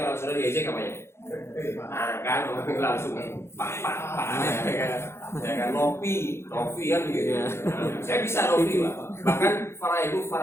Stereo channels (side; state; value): right; late; 0.12 ms